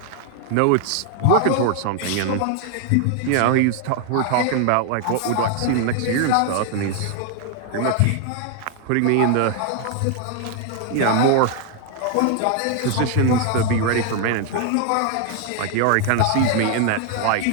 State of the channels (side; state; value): both; different; correlation 0.00